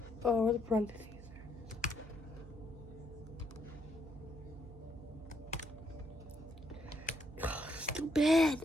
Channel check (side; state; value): right; noise; hum, 15 dB below the sound